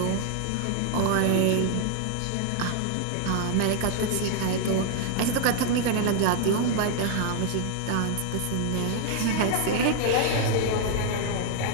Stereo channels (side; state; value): both; different; correlation 0.00